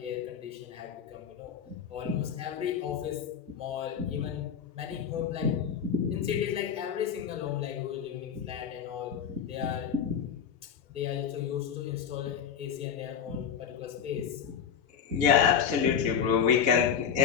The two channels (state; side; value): quieter; right; 7.6 dB